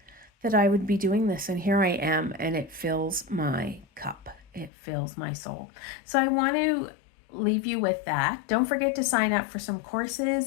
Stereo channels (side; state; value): right; drops out; at 4.7 s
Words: that I would be doing this, and here I am, and it fills my cup. It fills my soul. So I want to leave you with that. Don't forget to sign up for some